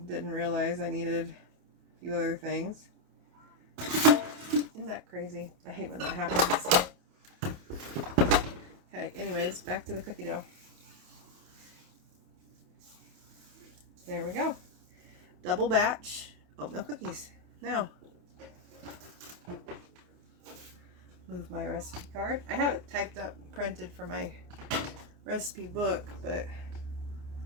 didn't realize I needed a few other things. Isn't that crazy? I hate when that happens. Okay, anyways, back to the cookie dough. There we go. Double batch oatmeal cookies. Now, move my recipe card. I have it typed up and printed for my recipe book, but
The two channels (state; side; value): late; left; 28 ms